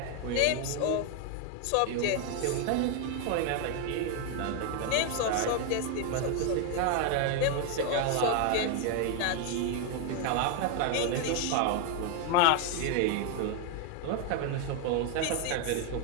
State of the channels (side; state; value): both; different; correlation 0.01